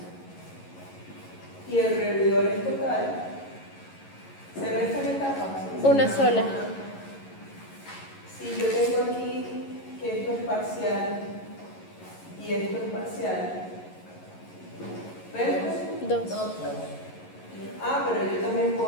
y el revidor es total, ¿se restan etapas? Una sola. Si yo tengo aquí que esto es parcial y esto es parcial, ¿ves? Dos. Ah, pero yo también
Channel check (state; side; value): late; right; 11 ms